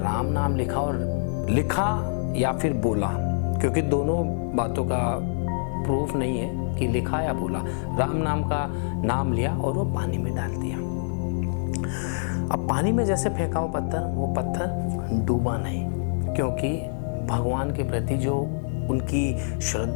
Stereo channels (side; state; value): right; silent; 61 dB below the other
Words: नाम लिखा, और लिखा या फिर बोला, क्योंकि दोनों बातों का प्रूफ नहीं है कि लिखा या बोला। राम नाम का नाम लिया और वो पानी में डाल दिया। अब पानी में जैसे फेंका वो पत्थर डूबा नहीं, क्योंकि भगवान के प्रति जो उनकी